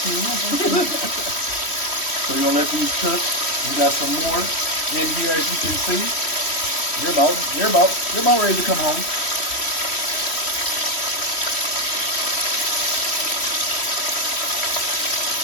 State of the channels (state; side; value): late; right; 3.1 ms